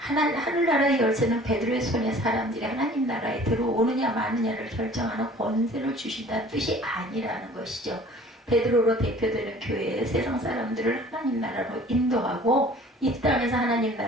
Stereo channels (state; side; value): normal; both; correlation 0.49